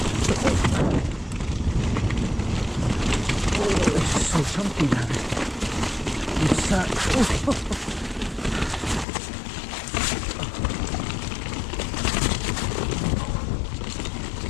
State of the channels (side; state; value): right; drops out; at 9.1 s